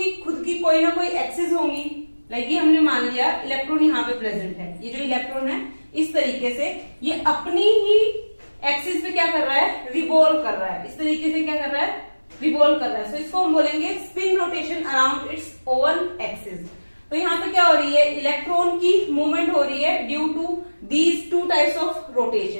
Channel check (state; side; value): inverted; both; correlation -1.00